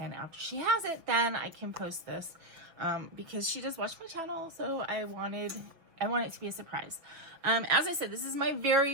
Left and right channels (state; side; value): late; left; 6.1 ms